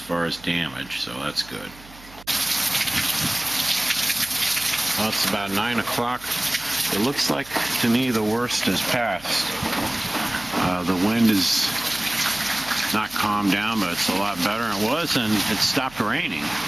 as damage, so that's good. Well, it's about 9 o'clock. It looks like, to me, the worst has passed. The wind is not calmed down, but it's a lot better than it was, and it stopped raining,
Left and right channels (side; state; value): right; noise; hum, 22 dB below the sound